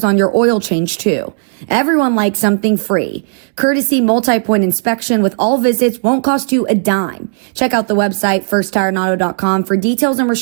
on your oil change too. Everyone likes something free. Courtesy multi-point inspection with all visits won't cost you a dime. Check out the website firsttireandauto.com for details and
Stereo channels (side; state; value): left; silent; digital silence